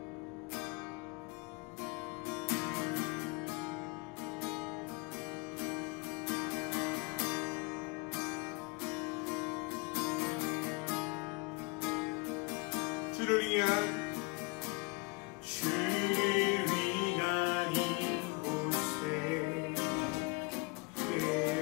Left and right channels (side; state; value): right; quieter; 27.2 dB